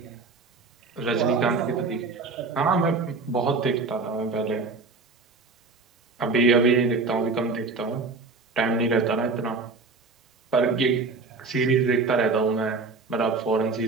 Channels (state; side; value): quieter; left; 4.0 dB